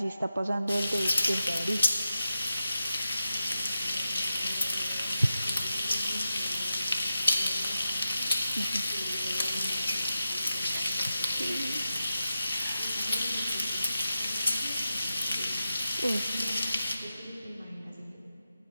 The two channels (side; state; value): both; inverted; correlation -0.90